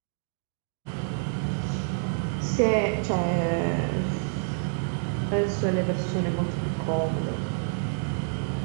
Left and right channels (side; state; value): left; silent; digital silence